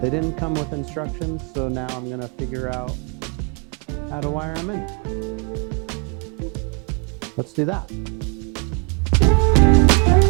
didn't come with instructions, so now I'm gonna figure out how to wire them in. Let's do that.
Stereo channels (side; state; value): left; quieter; 34.5 dB